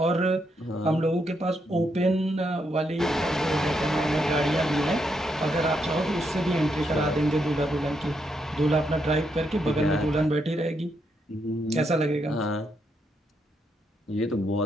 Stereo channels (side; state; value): both; normal; correlation 0.79